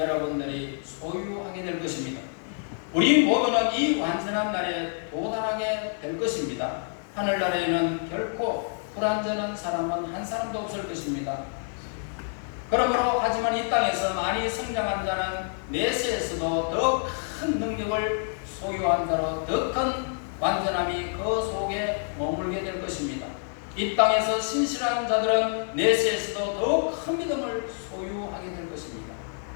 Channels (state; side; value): silent; right; 60 dB below the other